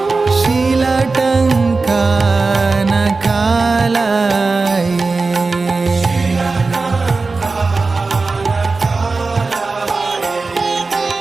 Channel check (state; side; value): quieter; left; 3.9 dB